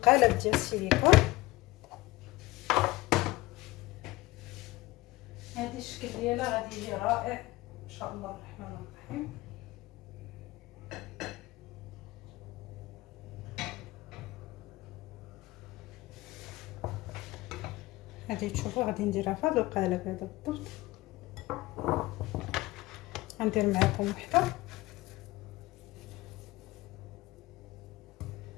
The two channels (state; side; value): quieter; right; 19.5 dB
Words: ديال السيليكون. هذه الشكل ديالها غادي يجي رائع ان شاء الله الرحمن الرحيم. هذه تشوفوا غادي نديرها في هذا القالب هذا بالضبط. غندير معكم وحده